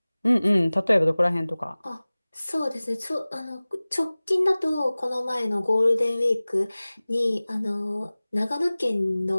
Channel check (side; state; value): both; inverted; correlation -0.99